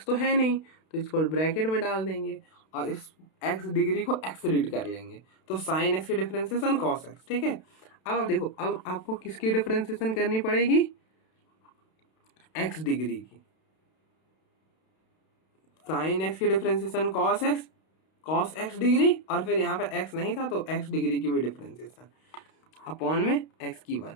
तो है नहीं, तो इसको ब्रैकेट में डाल देंगे और इस एक्स डिग्री को एक्स रीड कर लेंगे, तो साइन एक्स की डिफरेंशिएशन कॉस एक्स। ठीक है, अब देखो, अब आपको किसकी डिफरेंशिएशन करनी पड़ेगी, एक्स डिग्री की। साइन एक्स की डिफरेंशिएशन कॉस एक्स डिग्री, और फिर यहाँ पे एक्स नहीं था तो एक्स डिग्री की भी डिफरेंशिएशन अपॉन में एक्स की 1।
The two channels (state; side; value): late; right; 32 ms